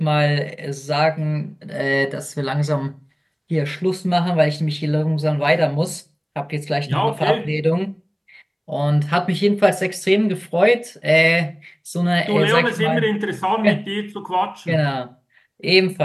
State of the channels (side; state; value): both; identical; correlation 1.00